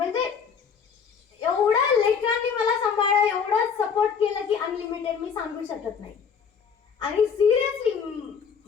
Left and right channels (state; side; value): quieter; right; 6.5 dB